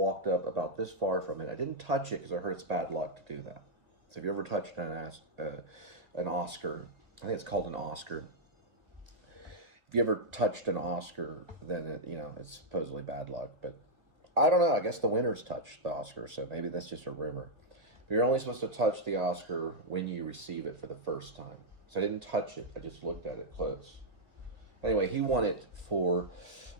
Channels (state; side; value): late; left; 2.1 ms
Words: up about this far from it. I didn't touch it because I heard it's bad luck to do that. So if you ever touched an Oscar, I think it's called an Oscar. If you ever touched an Oscar, then it's supposedly bad luck. But I don't know. I guess the winners touched the Oscar, so maybe that's just a rumor. But you're only supposed to touch the Oscar when you receive it for the first time. So I didn't touch it. I just looked at it close. Anyway, he won it for